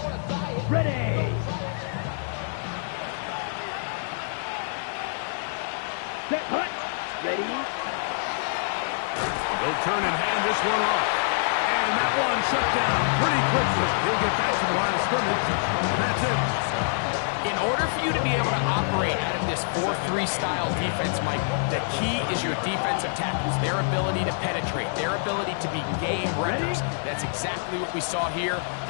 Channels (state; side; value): silent; right; 58 dB below the other